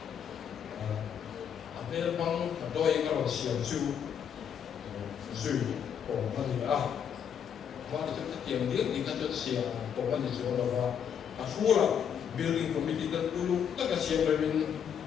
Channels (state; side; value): quieter; right; 8.1 dB